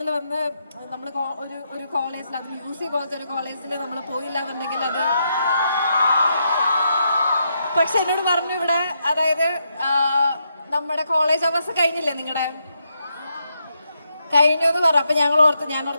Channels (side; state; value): both; inverted; correlation -0.80